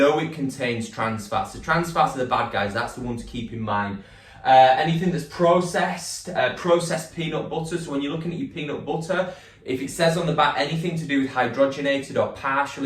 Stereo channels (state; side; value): identical; both; correlation 1.00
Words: it contains trans fats. So trans fats are the bad guys, that's the one to keep in mind. Anything that's processed peanut butter. So when you're looking at your peanut butter, if it says on the back anything to do with hydrogenated or